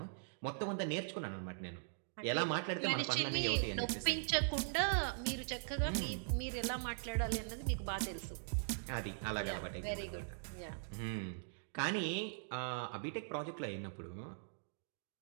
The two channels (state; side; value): silent; left; digital silence